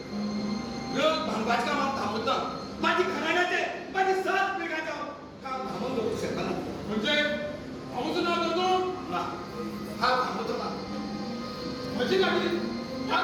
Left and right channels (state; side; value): identical; both; correlation 1.00